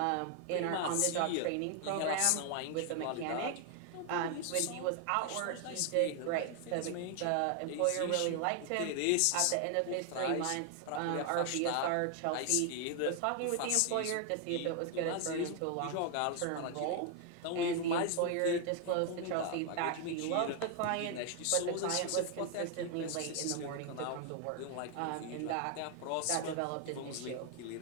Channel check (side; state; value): both; different; correlation 0.00